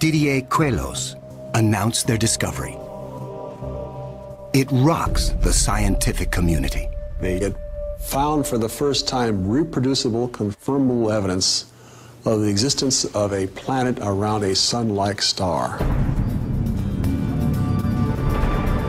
Queloz announce their discovery. It rocks the scientific community. Very good. found for the first time reproducible, confirmable evidence of the existence of a planet around a sun-like star.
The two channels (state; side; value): identical; both; correlation 1.00